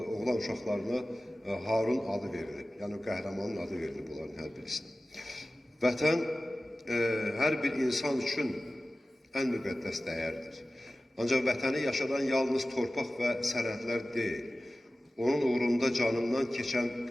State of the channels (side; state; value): both; normal; correlation 0.96